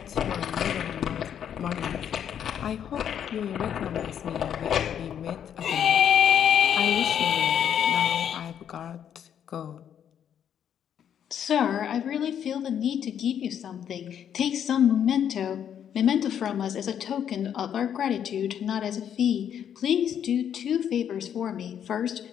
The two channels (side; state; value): right; quieter; 9.1 dB